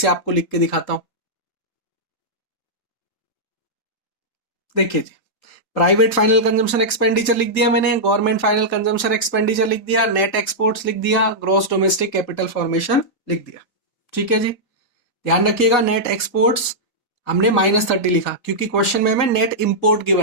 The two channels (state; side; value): late; right; 4.2 ms